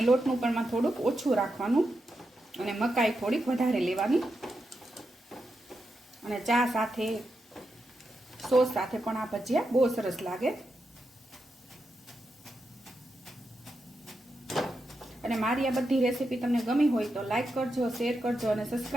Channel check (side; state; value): both; normal; correlation 0.86